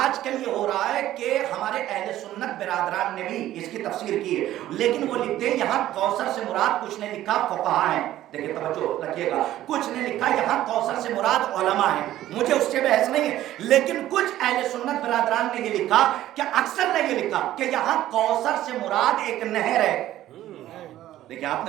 کل یہ ہو رہا ہے کہ ہمارے اہل سنت برادران نے بھی اس کی تفسیر کی ہے، لیکن وہ لکھتے ہیں یہاں کوثر سے مراد، کچھ نے لکھا فقہاء ہیں. دیکھیں توجہ رکھیے گا، کچھ نے لکھا یہاں کوثر سے مراد علماء ہیں. مجھے اس سے بحث نہیں ہے، لیکن کچھ اہل سنت برادران نے یہ لکھا کہ اکثر نے یہ لکھا کہ یہاں کوثر سے مراد ایک نہر ہے. دیکھیں آپ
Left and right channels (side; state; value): left; quieter; 13.7 dB